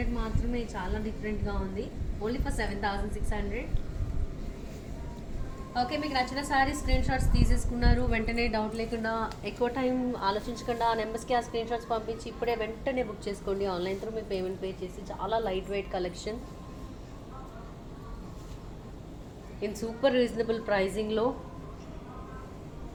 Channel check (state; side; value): identical; both; correlation 1.00